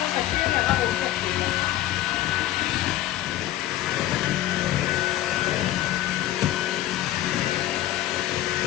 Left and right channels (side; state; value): right; quieter; 14.2 dB